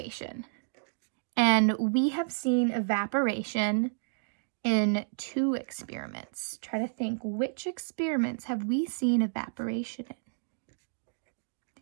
And we have seen evaporation in 2 experiments. Try to think, which experiments have we seen evaporation in?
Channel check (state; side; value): silent; left; digital silence